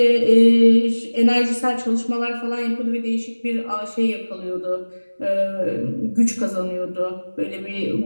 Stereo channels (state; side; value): inverted; both; correlation -1.00